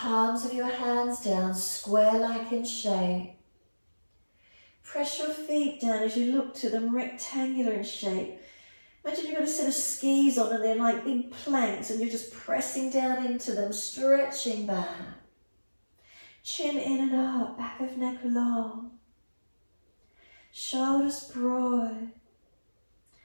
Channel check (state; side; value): inverted; both; correlation -1.00